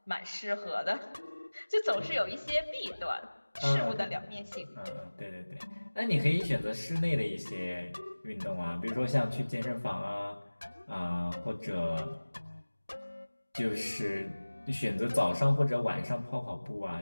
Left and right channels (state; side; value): inverted; both; correlation -1.00